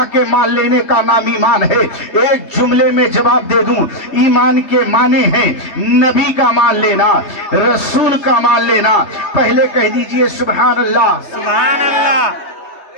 کے مان لینے کا نام ایمان ہے؟ ایک جملے میں جواب دے دوں، ایمان کے معنی ہیں نبی کا مان لینا، رسول کا مان لینا۔ پہلے کہہ دیجئے سبحان اللہ، سبحان اللہ۔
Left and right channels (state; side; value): late; right; 3.3 ms